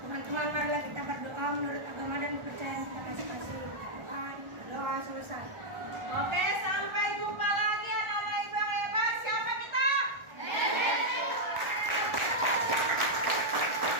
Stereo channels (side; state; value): left; late; 1.4 ms